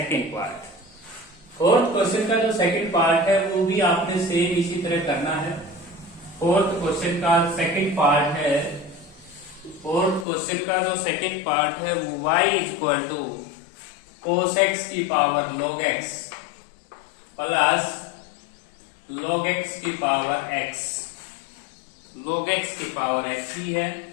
पार्ट। फोर्थ क्वेश्चन का जो सेकंड पार्ट है वो भी आपने सेम इसी तरह करना है। फोर्थ क्वेश्चन का सेकंड पार्ट है, फोर्थ क्वेश्चन का जो सेकंड पार्ट है वो y equal to cos x की power log x plus log x की पावर x, log x की पावर x ही है।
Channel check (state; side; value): drops out; right; at 10.2 s